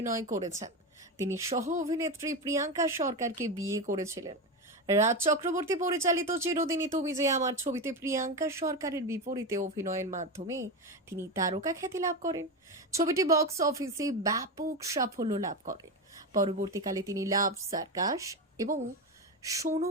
করেছেন। তিনি সহ অভিনেত্রী প্রিয়াঙ্কা সরকারকে বিয়ে করেছিলেন। রাজ চক্রবর্তী পরিচালিত চিরদিনই তুমি যে আমার ছবিতে প্রিয়াঙ্কা সরকারের বিপরীতে অভিনয়ের মাধ্যমে তিনি তারকা খ্যাতি লাভ করেন। ছবিটি বক্স অফিসে ব্যাপক সাফল্য লাভ করে। পরবর্তীকালে তিনি লাভ সার্কাস এবং শোনো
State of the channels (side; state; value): both; normal; correlation 0.16